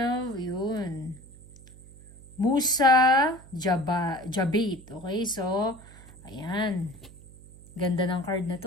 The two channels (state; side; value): noise; right; hum, 21 dB below the sound